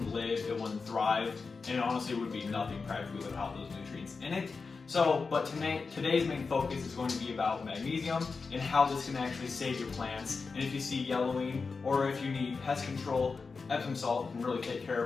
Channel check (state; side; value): quieter; right; 4.6 dB